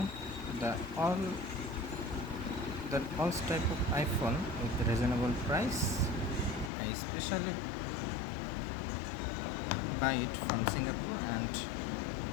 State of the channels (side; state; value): right; drops out; at 6.7 s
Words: the all type of iPhone with reasonable price. I especially buy it from Singapore, and